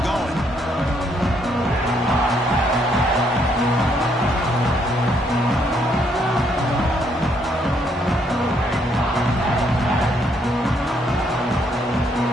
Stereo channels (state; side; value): normal; both; correlation 0.71